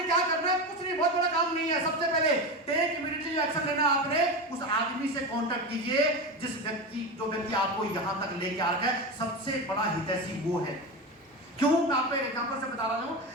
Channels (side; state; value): both; normal; correlation 0.21